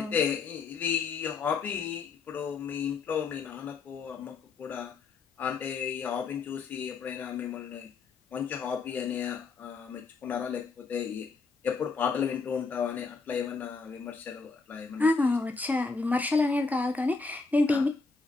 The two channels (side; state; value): right; quieter; 4.4 dB